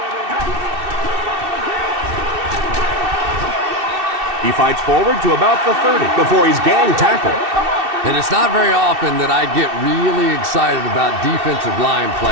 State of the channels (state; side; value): late; left; 2.7 ms